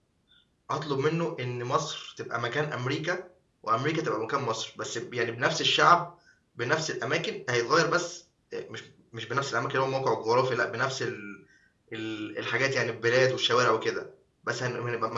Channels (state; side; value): identical; both; correlation 1.00